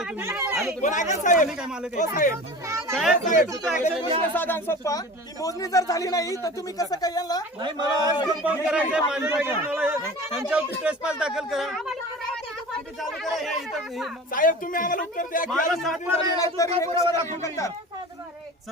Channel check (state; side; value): normal; both; correlation 0.36